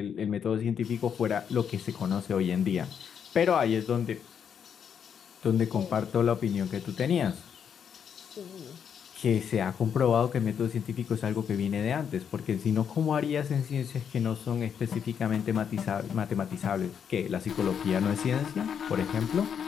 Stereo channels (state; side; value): quieter; right; 7.7 dB